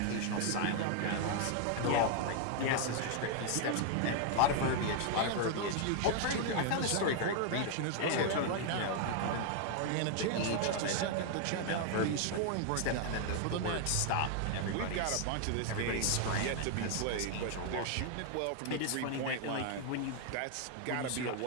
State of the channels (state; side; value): different; both; correlation 0.00